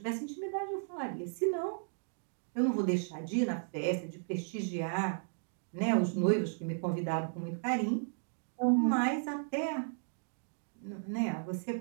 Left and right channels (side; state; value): left; silent; digital silence